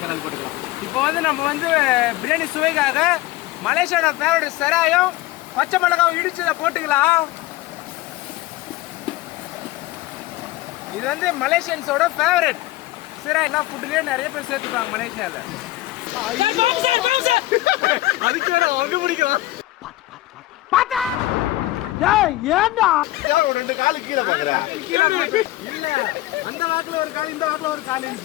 போட்டுக்கலாம். இப்போ வந்து நம்ம வந்து பிரியாணி சுவைக்காக மலேசியாவோட ஃபேவரட் செராயும் பச்சை மிளகாய் இடிச்சதை போட்டுக்கலாம். இது வந்து மலேசியன்ஸோட ஃபேவரட். செராய் எல்லாம் ஃபுட்லயே நிறைய பேர் சேர்த்துப்பாங்க மலேசியால. அதுக்கு வேற அவங்க பிடிக்கும். ஒரு 2 காலு கீழே பாக்குறேன். இல்ல அந்த வாக்குல ஒரு கால், இந்த வாக்குல ஒரு கால்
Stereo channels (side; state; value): right; quieter; 17.4 dB